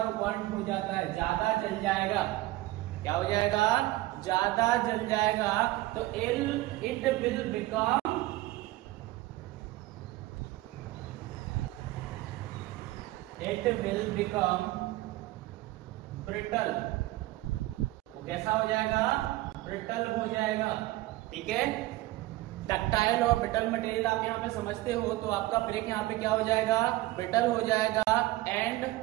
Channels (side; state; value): left; quieter; 17.8 dB